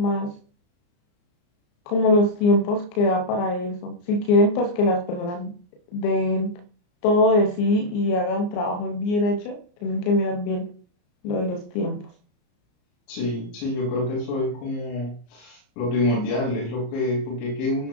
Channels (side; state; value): right; late; 34 ms